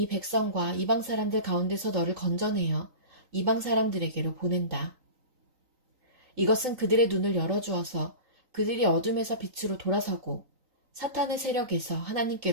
백성과 이방 사람들 가운데서 너를 건져내어 이방 사람들에게로 보낸다. 이것은 그들의 눈을 열어주어서 그들이 어둠에서 빛으로 돌아서고 사탄의 세력에서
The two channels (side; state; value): left; late; 3.9 ms